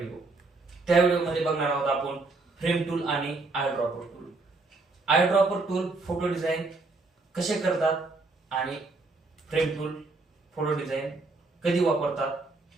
त्या व्हिडिओमध्ये बघणार आहोत आपण फ्रेम टूल आणि I dropper tool. I dropper tool photo design कसे करतात आणि फ्रेम टूल फोटो डिझाईन कधी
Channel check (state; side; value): quieter; left; 3.5 dB